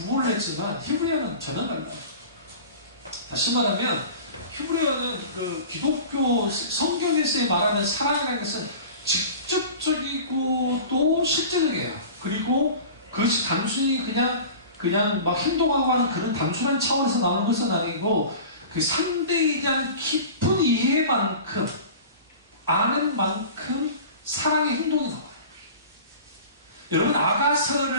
했지만 히브리어는 전혀 달라요. 다시 말하면 히브리어는 그 기독교 성경에서 말하는 사랑이라는 것은 직접적이고 또 실제적이에요. 그리고 그것이 단순히 그냥 막 행동하고 하는 그런 단순한 차원에서 나오는 것은 아니고 그 상대에 대한 깊은 이해만큼 아는 만큼 사랑의 행동이 나와요. 여러분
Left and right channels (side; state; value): both; inverted; correlation -0.38